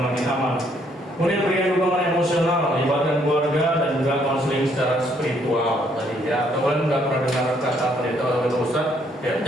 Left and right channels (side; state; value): both; normal; correlation 0.69